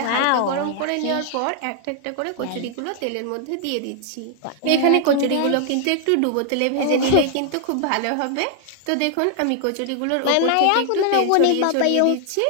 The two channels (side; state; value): both; different; correlation 0.00